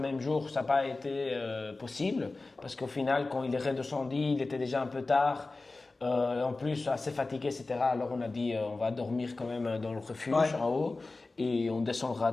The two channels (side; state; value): right; quieter; 3.4 dB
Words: jour, ça n'a pas été possible parce qu'au final, quand il est redescendu, il était déjà un peu tard. En plus, assez fatigué, etc. Alors on a dit on va dormir quand même dans le refuge en haut et on descendra